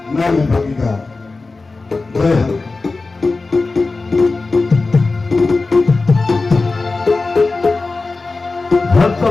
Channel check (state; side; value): quieter; right; 3.7 dB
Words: নামে ভাগিদা জয় হৰি।